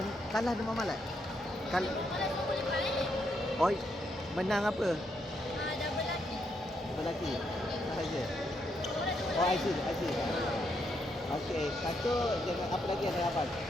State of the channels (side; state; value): both; normal; correlation 0.78